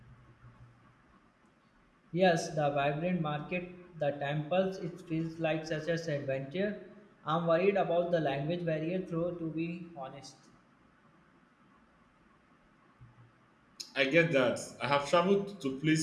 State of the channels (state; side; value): identical; both; correlation 1.00